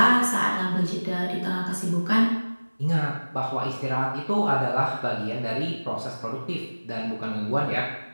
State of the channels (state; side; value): inverted; both; correlation -1.00